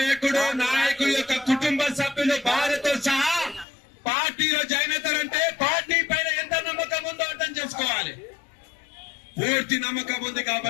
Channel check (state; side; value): drops out; right; at 3.7 s